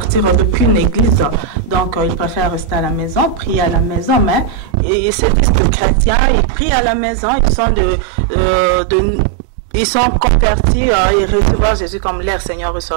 d'aucune église. Donc, ils préfèrent rester à la maison, prier à la maison, mais ils se disent que chrétiens, ils prient à la maison, ils sont convertis, ils reçoivent Jésus comme leur Seigneur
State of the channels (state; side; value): drops out; left; at 4.8 s